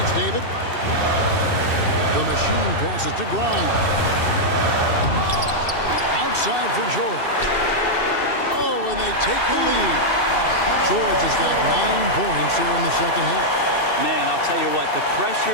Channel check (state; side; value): late; right; 2.6 ms